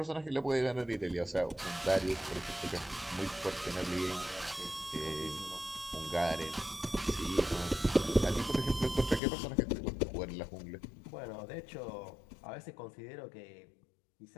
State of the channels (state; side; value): drops out; right; at 9.2 s